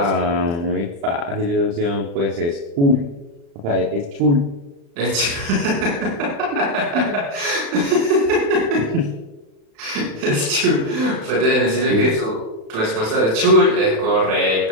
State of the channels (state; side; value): late; left; 36 ms